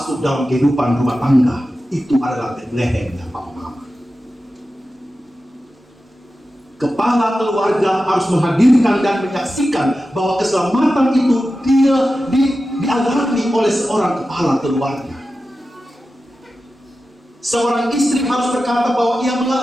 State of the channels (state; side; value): normal; both; correlation 0.93